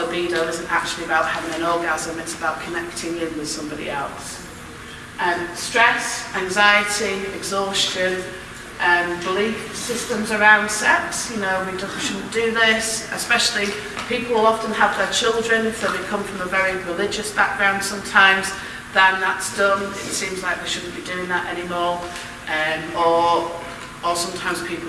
libido isn't actually about having an orgasm, it's about connecting in with somebody else. Stress, anxiety, exhaustion, belief systems around sex, we shouldn't do this, especially people will often have their children, if they come from a very religious background sometimes, then that's done, it seems like they shouldn't be doing that anymore, or sometimes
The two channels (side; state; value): both; identical; correlation 1.00